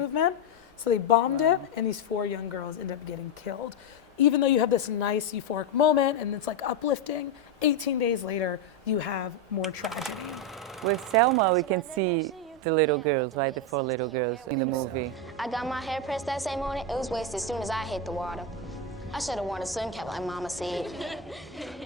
So they bombed it, and these 4 young girls end up getting killed. Even though you have this nice euphoric moment and it's like uplifting, 18 days later, you have more tragedy. With Selma, we can see the little girls, right? The 4 little girls in the movie. I got my hair pressed that same morning. It was wasted as soon as I hit the water. I should have worn a sun cap like Mama said.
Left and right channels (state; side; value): normal; both; correlation 0.06